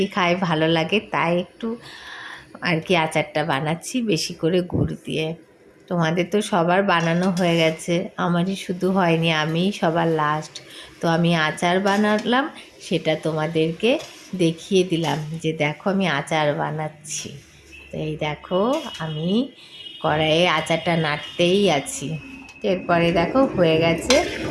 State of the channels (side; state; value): both; identical; correlation 1.00